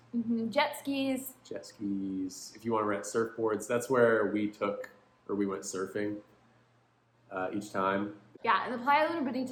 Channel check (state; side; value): identical; both; correlation 1.00